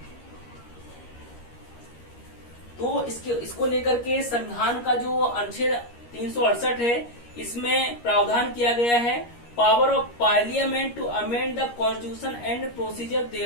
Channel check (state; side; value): late; right; 13 ms